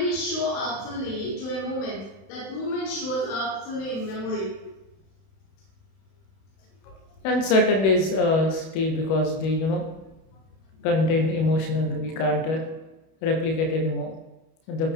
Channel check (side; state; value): right; late; 31 ms